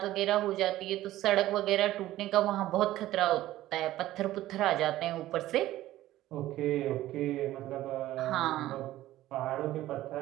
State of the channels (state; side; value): quieter; left; 15.0 dB